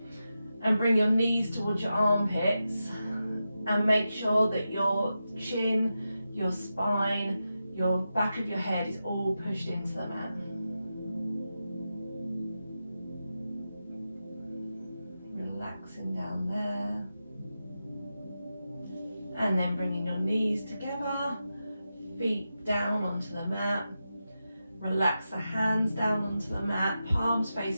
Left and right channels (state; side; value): inverted; both; correlation -0.90